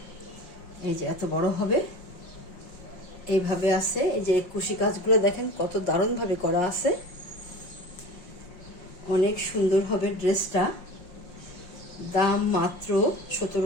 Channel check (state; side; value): late; right; 5.5 ms